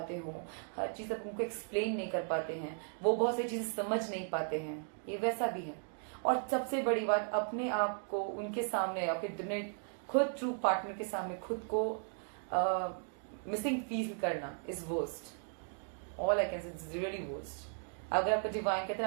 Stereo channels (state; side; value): silent; left; 54 dB below the other